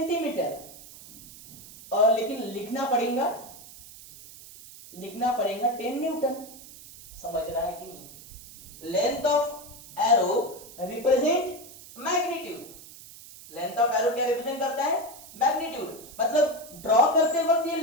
और लेकिन लिखना पड़ेगा 10 न्यूटन। समझ रहा है कि नहीं। Length of arrow represent magnitude. Length of arrow क्या रिप्रेजेंट करता है, मैग्नीट्यूड। मतलब ड्रॉ करते वक्त ये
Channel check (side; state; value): right; noise; hiss, 18 dB below the sound